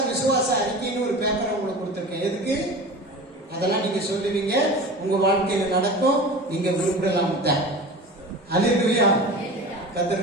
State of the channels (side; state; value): both; normal; correlation 0.34